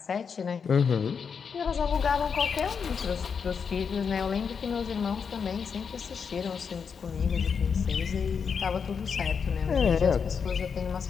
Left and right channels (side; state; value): right; quieter; 6.2 dB